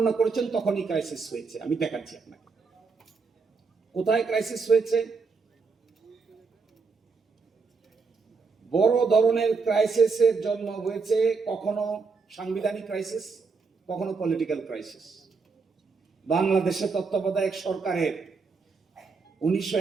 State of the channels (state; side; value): quieter; left; 4.7 dB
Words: করেছেন তখনই ক্রাইসিস হয়েছে। আমি দেখাচ্ছি আপনাকে কোথায় ক্রাইসিস হয়েছে। বড় ধরনের ক্রাইসিসের জন্ম হয়েছে কখনো সাংবিধানিক ক্রাইসিস, কখনো পলিটিক্যাল ক্রাইসিস। বাংলাদেশে তত্ত্বাবধায়ক সরকারের